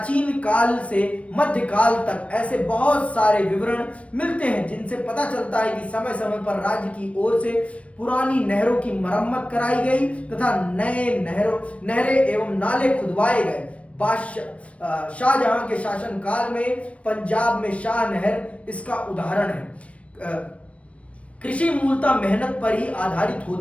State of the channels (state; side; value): late; right; 0.063 ms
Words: काल से मध्य काल तक ऐसे बहुत सारे विवरण मिलते हैं जिनसे पता चलता है कि समय समय पर राज्य की ओर से पुरानी नहरों की मरम्मत कराई गई तथा नए नहरें एवं नाले खुदवाए गए। शाहजहां के शासन काल में पंजाब में शाह नहर इसका उदाहरण है। कृषि मूलतः मेहनत पर ही आधारित